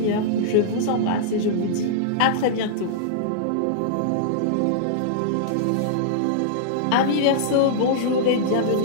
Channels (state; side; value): different; both; correlation -0.02